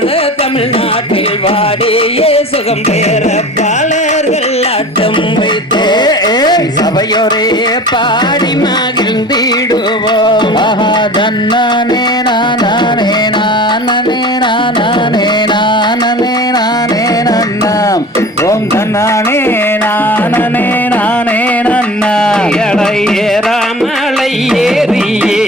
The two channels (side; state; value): both; normal; correlation 0.39